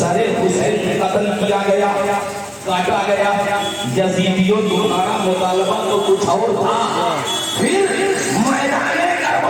حسین قتل کیا گیا، کاٹا گیا. یزیدیوں تمہارا مطالبہ تو کچھ اور تھا. پھر میدان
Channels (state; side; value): identical; both; correlation 1.00